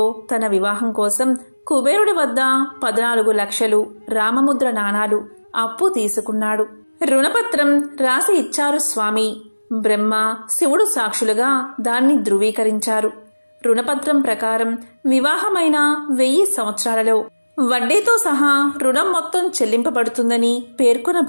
తన వివాహం కోసం కుబేరుడి వద్ద 14 లక్షలు రామముద్ర నాణాలు అప్పు తీసుకున్నాడు. రుణపత్రం రాసి ఇచ్చారు స్వామి. బ్రహ్మ, శివుడు సాక్షులుగా దాన్ని ధృవీకరించారు. రుణపత్రం ప్రకారం వివాహమైన 1000 సంవత్సరాలలో వడ్డీతో సహా రుణం మొత్తం చెల్లింపబడుతుందని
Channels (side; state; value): both; inverted; correlation -1.00